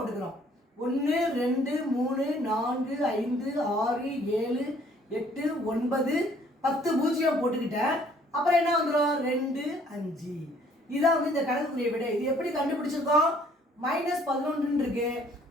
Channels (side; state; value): both; normal; correlation 0.60